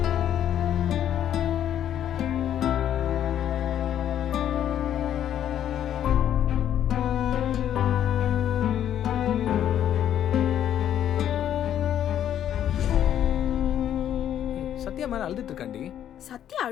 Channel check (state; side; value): quieter; right; 10.5 dB